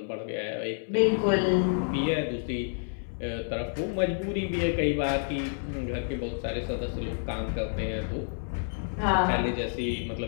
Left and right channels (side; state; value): right; silent; 59 dB below the other